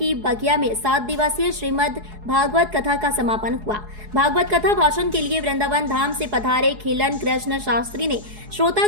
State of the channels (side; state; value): left; late; 4.7 ms